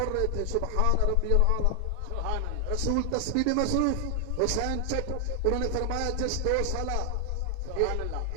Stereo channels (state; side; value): different; both; correlation 0.00